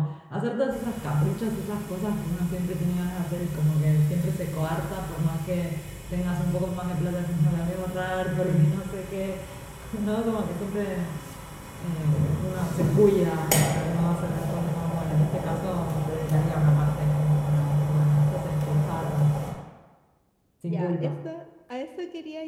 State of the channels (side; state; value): both; identical; correlation 1.00